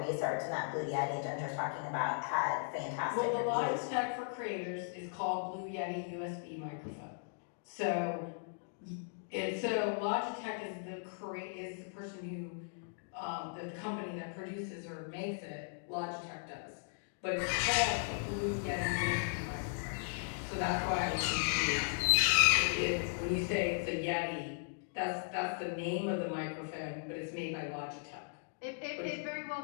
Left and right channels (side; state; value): right; silent; digital silence